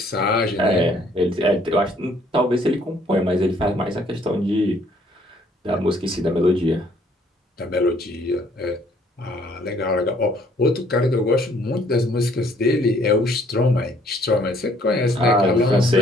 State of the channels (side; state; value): both; normal; correlation 0.63